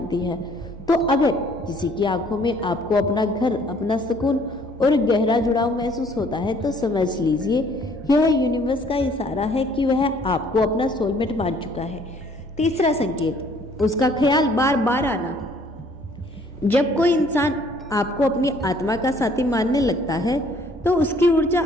है। तो अगर किसी की आंखों में आपको अपना घर, अपना सुकून और गहरा जुड़ाव महसूस होता है तो समझ लीजिए यह यूनिवर्स का इशारा है कि वह आपको अपना सोलमेट मान चुका है। तीसरा संकेत, उसका ख्याल बार बार आना। जब कोई इंसान आपको अपनी आत्मा का साथी मानने लगता है तो उसकी ऊर्जा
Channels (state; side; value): normal; both; correlation 0.59